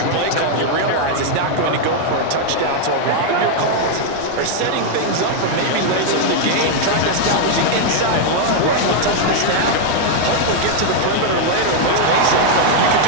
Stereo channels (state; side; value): different; both; correlation 0.00